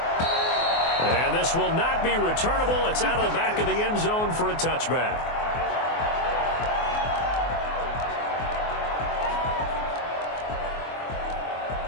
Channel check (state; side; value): late; right; 24 ms